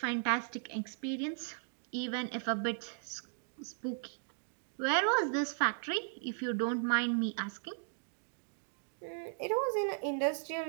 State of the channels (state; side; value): silent; left; digital silence